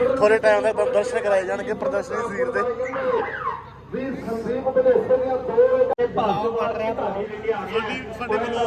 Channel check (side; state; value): both; identical; correlation 1.00